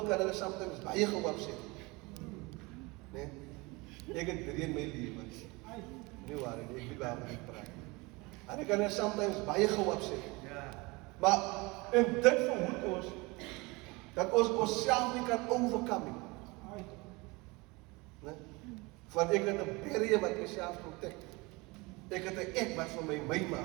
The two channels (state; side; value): quieter; left; 25.0 dB